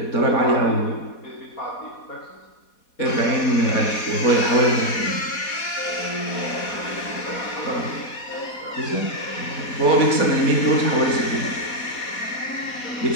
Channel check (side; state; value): right; late; 4.1 ms